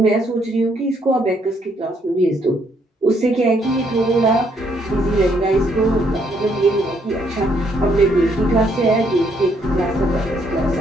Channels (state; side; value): normal; both; correlation 0.71